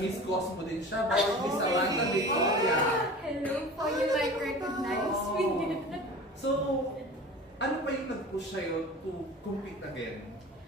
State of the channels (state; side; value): normal; both; correlation 0.37